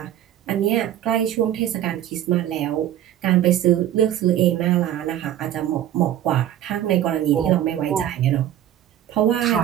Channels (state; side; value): quieter; left; 11.7 dB